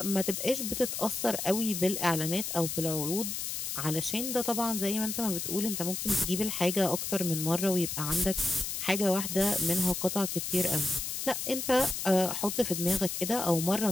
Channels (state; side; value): noise; left; hiss, 4 dB below the sound